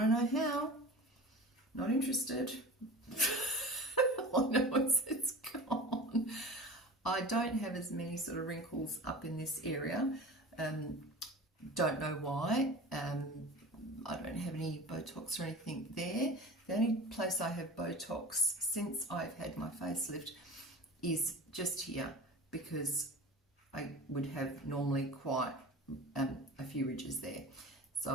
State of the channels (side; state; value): both; normal; correlation 0.36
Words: to know how. Not interested. I know it's gone. I don't have as many sort of wrinkles up in this area. Don't know why. I don't have any Botox or anything there. The only place I have Botox since I've had my facelift is just here, because I would have normally quite a few ridges there.